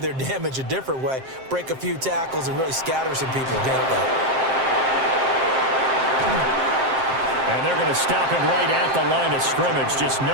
damage a different way, break a few tackles, and really scatter some people, can't they? And they're going to stop him right at the line of scrimmage. Just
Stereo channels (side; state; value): left; late; 7.6 ms